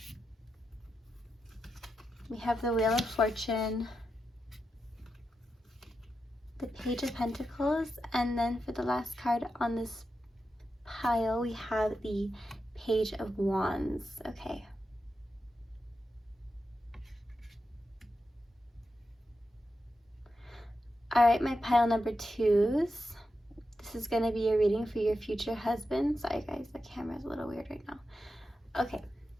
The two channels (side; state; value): both; normal; correlation 0.88